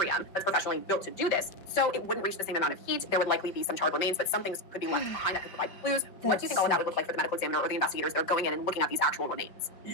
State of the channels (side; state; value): right; late; 5.2 ms